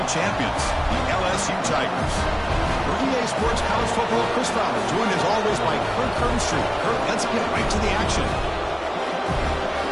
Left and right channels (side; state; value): both; identical; correlation 1.00